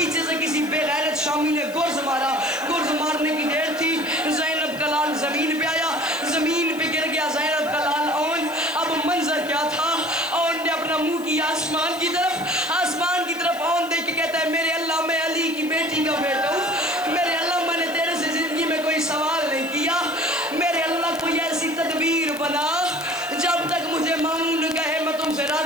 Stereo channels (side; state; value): left; noise; hiss, 18 dB below the sound